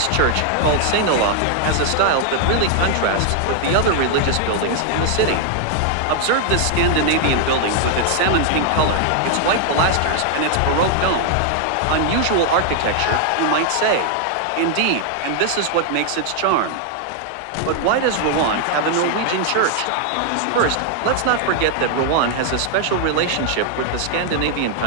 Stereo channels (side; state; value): both; different; correlation 0.00